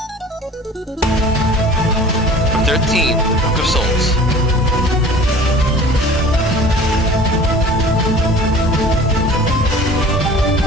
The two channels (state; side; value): normal; both; correlation 0.44